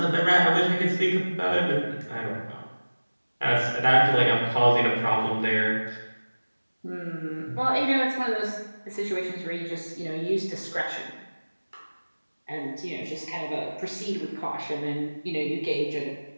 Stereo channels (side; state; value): both; inverted; correlation -1.00